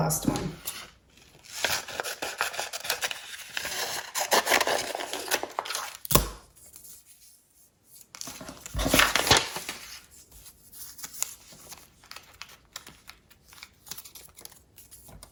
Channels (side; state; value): both; identical; correlation 1.00